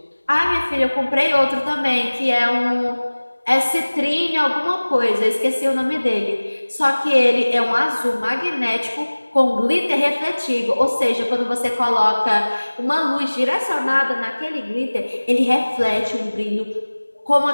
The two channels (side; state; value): both; inverted; correlation -1.00